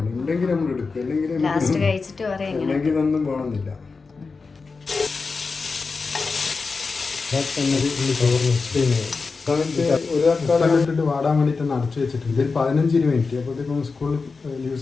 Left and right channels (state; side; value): quieter; right; 4.4 dB